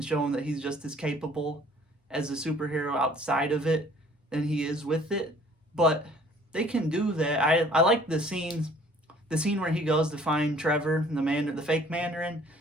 show him that he's just as capable as a superhero outside of it than he is with it. But they can do that. I like the scene where he goes to find Trevor, the fake Mandarin.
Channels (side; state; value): both; normal; correlation 0.55